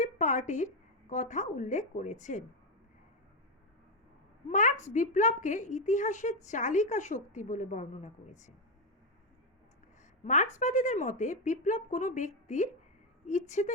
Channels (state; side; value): normal; both; correlation 0.06